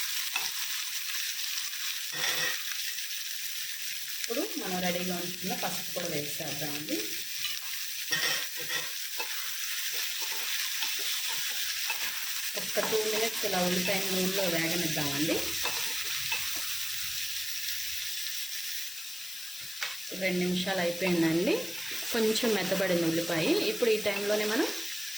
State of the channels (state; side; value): noise; left; hiss, 10 dB below the sound